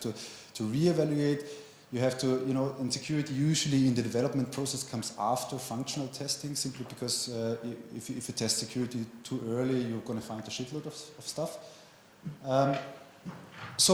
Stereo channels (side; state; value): both; identical; correlation 1.00